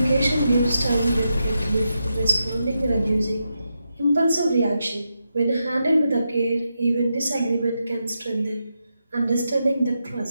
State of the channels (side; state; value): both; inverted; correlation -0.86